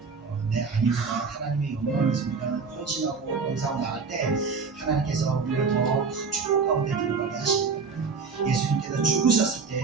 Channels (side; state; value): left; quieter; 5.0 dB